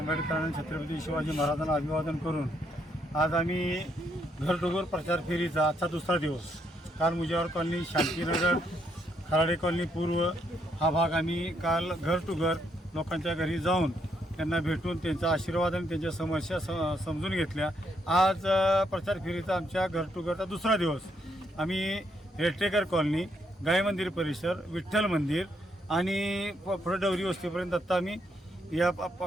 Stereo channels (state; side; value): normal; both; correlation 0.75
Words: छत्रपती शिवाजी महाराजांना अभिवादन करून आज आम्ही घर टू घर प्रचार फेरीचा आजचा दुसरा दिवस. काल मुजावर कॉलनी, शांतीनगर, खराडे कॉलनी पूर्व हा भाग आम्ही काल घर टू घर लोकांच्या घरी जाऊन त्यांना भेटून त्यांचा आशीर्वाद आणि त्यांच्या समस्या समजून घेतल्या. आज प्रचार फेरीचा आमच्या घर टू घरचा दुसरा दिवस. आम्ही रेटेकर कॉलनी, गाय मंदिर परिसर, विठ्ठल मंदिर आणि पुढे डवरी वस्तीपर्यंत आता आम्ही या